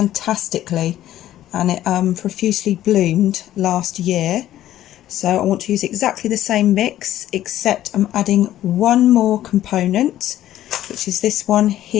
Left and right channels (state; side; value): quieter; right; 13.0 dB